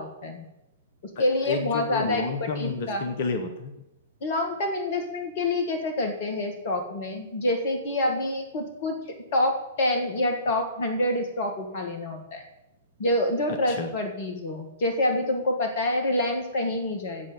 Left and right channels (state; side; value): inverted; both; correlation -0.46